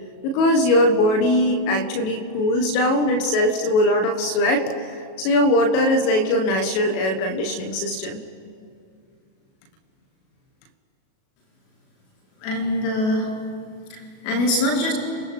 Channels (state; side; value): late; right; 37 ms